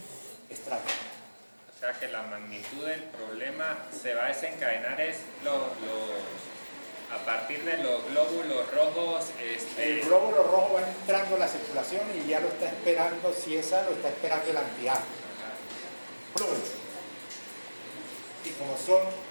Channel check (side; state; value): both; inverted; correlation -1.00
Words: extraños. O sea que la magnitud del problema se va a desencadenar a partir de los glóbulos rojos. El glóbulo rojo va entrando en la circulación y ya lo está esperando, si es A, lo está esperando el anti-A. Y como son